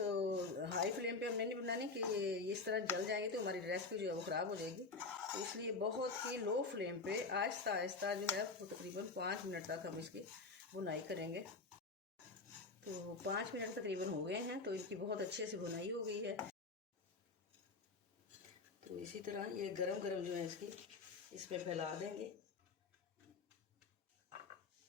हाई फ्लेम पे हमने नहीं बनानी कि ये इस तरह जल जाएंगे तो हमारी रेसिपी जो है वो ख़राब हो जाएगी। तो इसलिए बहुत ही लो फ्लेम पे आहिस्ता आहिस्ता जो है वो तकरीबन 5 मिनट तक हम इसकी बुनाई करेंगे। तो 5 मिनट तकरीबन हो गए हैं, तो इनकी बहुत अच्छे से बुनाई हो गई है। तो इसी तरह ये गरम गरम जो है इसकी इसमें फैला देंगे।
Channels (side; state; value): right; quieter; 3.9 dB